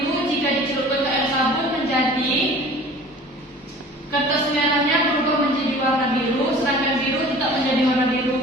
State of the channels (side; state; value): both; normal; correlation 0.45